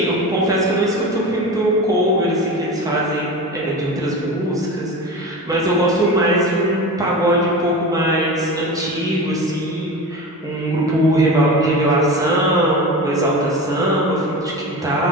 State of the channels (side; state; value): both; normal; correlation 0.29